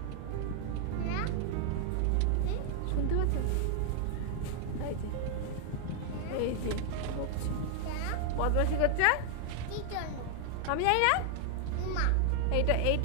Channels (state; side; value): different; both; correlation 0.00